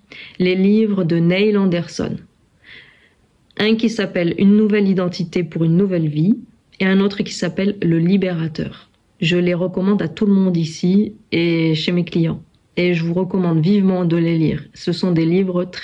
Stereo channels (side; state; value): both; identical; correlation 1.00